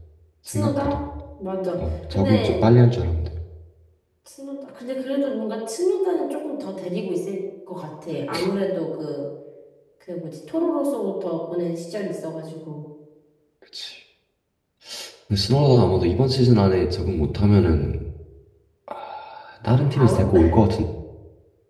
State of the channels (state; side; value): identical; both; correlation 1.00